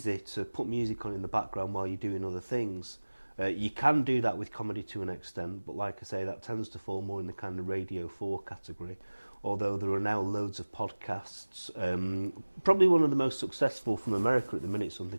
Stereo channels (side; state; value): both; inverted; correlation -1.00